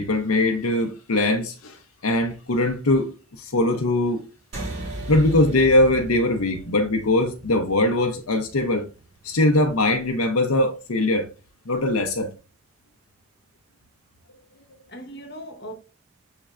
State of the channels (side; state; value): both; normal; correlation 0.05